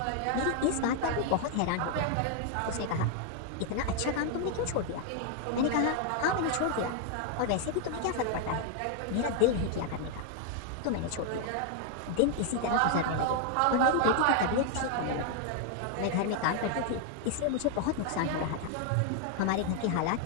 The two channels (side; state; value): both; different; correlation 0.00